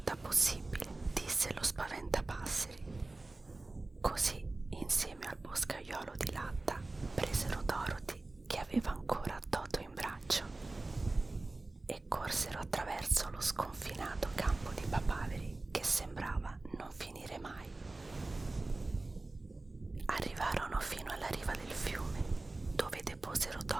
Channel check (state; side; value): quieter; left; 3.1 dB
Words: possibile», disse lo spaventapasseri. Così, insieme al boscaiolo di latta, presero Dorothy, che aveva ancora Toto in braccio, e corsero attraverso lo sconfinato campo di papaveri che sembrava non finire mai. Arrivarono fino alla riva del fiume, dove deposero